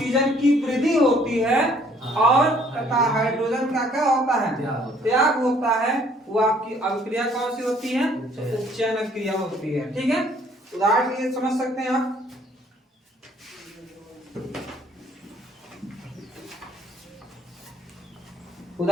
की वृद्धि होती है और तथा हाइड्रोजन का क्या होता है, त्याग होता है, वो आपकी अभिक्रिया कौन सी होती है, उपचयन अभिक्रिया होती है, ठीक है। उदाहरण के लिए समझ सकते हैं आप,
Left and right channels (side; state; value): both; normal; correlation 0.60